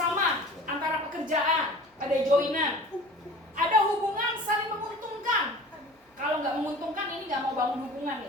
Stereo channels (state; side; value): normal; both; correlation 0.42